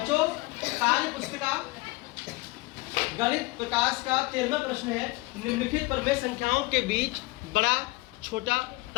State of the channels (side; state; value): right; quieter; 22.8 dB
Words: कार्य पुस्तिका गणित प्रकाश का 13वां प्रश्न है। निम्नलिखित प्रमेय संख्याओं के बीच बड़ा, छोटा